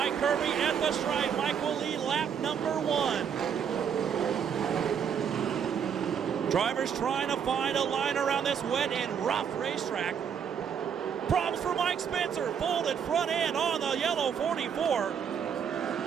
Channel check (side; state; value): left; quieter; 7.6 dB